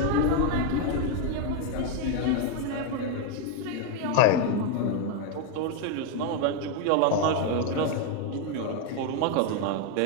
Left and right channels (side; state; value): both; different; correlation 0.01